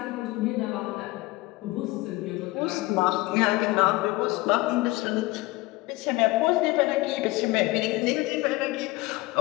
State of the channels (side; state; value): right; quieter; 21.0 dB